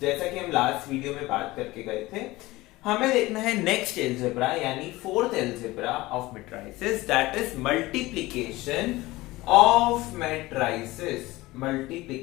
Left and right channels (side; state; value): right; quieter; 19.5 dB